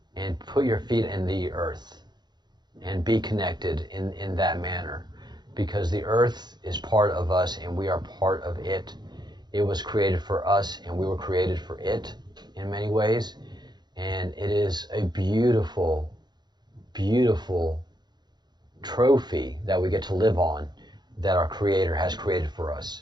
and put your feet in the earth and be connected in that manner, because the earth is part of us and we are part of it. It was created for us and we were created for it in many ways, and it is a beautiful, beautiful trophy that we get to live on, that our Creator has created for us.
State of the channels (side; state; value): left; late; 0.21 ms